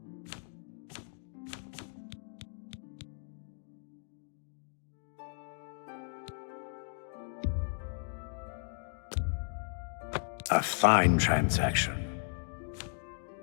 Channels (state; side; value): silent; right; 54 dB below the other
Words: A fine transaction.